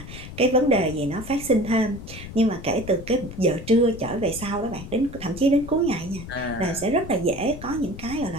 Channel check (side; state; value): left; noise; rumble, 12 dB below the sound